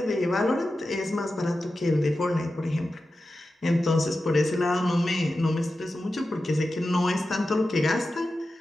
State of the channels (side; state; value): both; normal; correlation 0.92